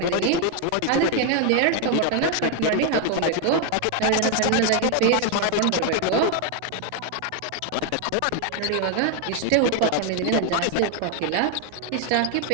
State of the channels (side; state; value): both; different; correlation 0.01